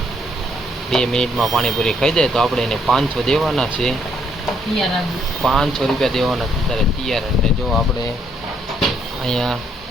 2 મિનિટમાં પાણીપુરી ખાઈ જાય તો આપણે એને 500 દેવાના છે. 500 રૂપિયા દેવાના છે ત્યારે તૈયાર. એટલે જો આપણે અહીંયા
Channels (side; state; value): both; normal; correlation 0.70